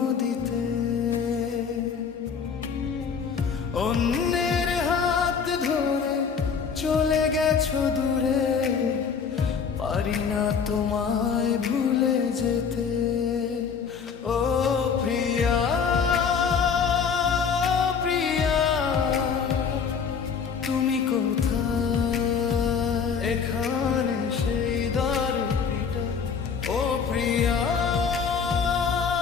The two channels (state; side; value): quieter; right; 6.3 dB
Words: অন্যের হাত ধরে চলে গেছো দূরে, পারি না তোমায় ভুলে যেতে। ও প্রিয়া প্রিয়া, তুমি কোথায়? এখানে সেই দ্বারটা। ও প্রিয়া